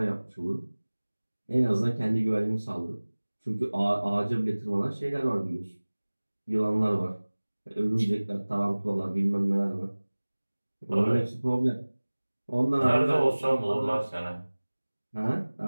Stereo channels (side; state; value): both; inverted; correlation -1.00